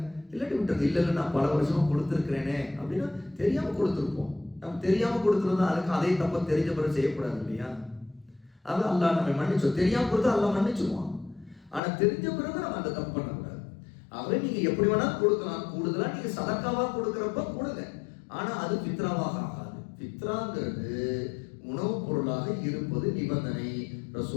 இல்லாட்டி விட்டுருங்க. இல்ல நான் பல வருஷமா கொடுத்துருக்கிறேனே அப்படின்னா தெரியாம கொடுத்துருப்போம். நம்ம தெரியாம கொடுத்துருந்தா அதுக்கு அதே தப்ப தெரிஞ்ச பிறகு செய்யக்கூடாது இல்லையா? அது அல்லாஹ் நம்ம மன்னிச்சோம். தெரியாம கொடுத்தா அல்லாஹ் மன்னிச்சுவான். ஆனா தெரிஞ்ச பிறகு நம்ம அந்த தப்பு பண்ணக்கூடாது. ஆகவே நீங்க எப்படி வேணா கொடுக்கலாம், கூடுதலா நீங்க சதக்காவா கொடுக்கறப்ப கொடுங்க, ஆனா அது ஃபித்ராவாக ஆகாது. ஃபித்ராங்கிறது உணவுப் பொருளாக இருப்பது நிபந்தனை.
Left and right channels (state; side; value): drops out; right; at 11.8 s